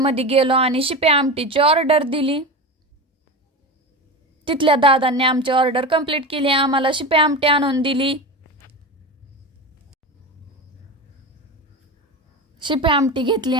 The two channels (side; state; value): both; normal; correlation 0.24